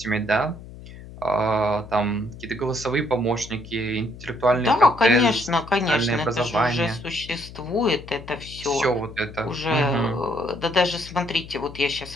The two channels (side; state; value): left; noise; hum, 15 dB below the sound